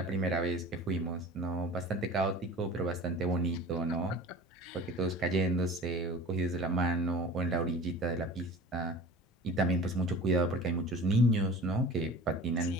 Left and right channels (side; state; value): both; normal; correlation 0.39